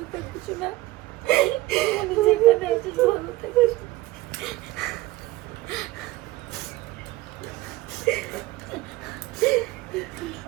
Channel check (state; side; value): quieter; left; 18.0 dB